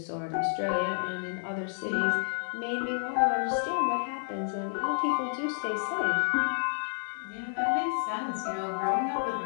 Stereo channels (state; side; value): silent; right; digital silence